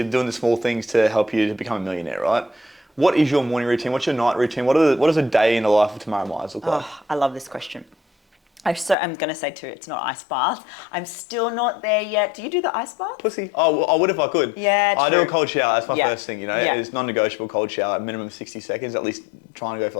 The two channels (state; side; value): drops out; right; at 9.0 s